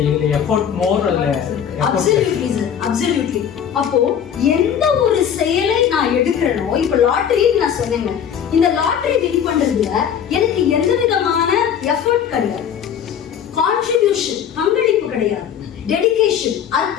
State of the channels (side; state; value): right; quieter; 8.5 dB